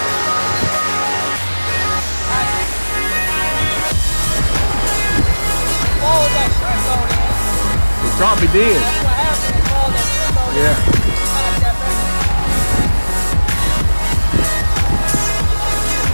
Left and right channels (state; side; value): inverted; both; correlation -1.00